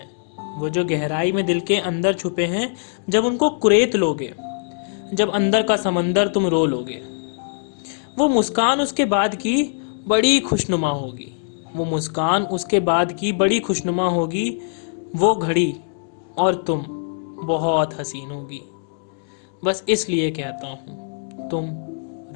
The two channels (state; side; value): silent; right; digital silence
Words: वो जो गहराई में दिल के अंदर छुपे हैं, जब उनको कुरेद लोगे, जब अंदर का समंदर तुम रो लोगे, वो मुस्कान उसके बाद की बड़ी खुशनुमा होगी। वो मुस्कान उसके बाद की बड़ी खुशनुमा होगी। वो घड़ी और तुम बहुत हसीन होगी। बस इसलिए कहता हूं तुम